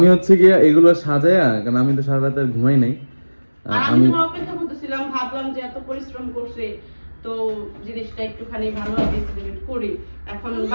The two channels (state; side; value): inverted; both; correlation -1.00